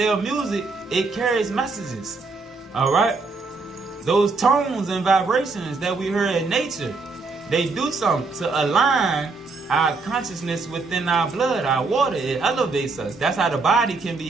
music, it carries messages. Alright? Those tones and vibrations that we hear in nature, they do something to align our consciousness within our blood, our water. It elevates us. That's how the body can be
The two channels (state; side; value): quieter; left; 4.0 dB